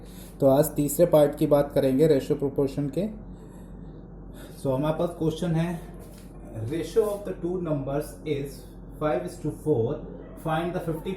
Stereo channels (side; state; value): both; identical; correlation 1.00